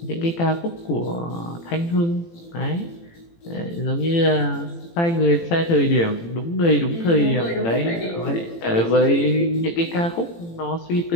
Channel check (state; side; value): late; right; 18 ms